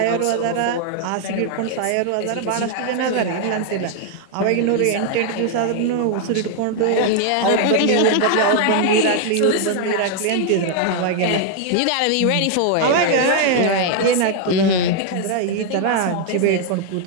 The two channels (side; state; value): both; different; correlation 0.00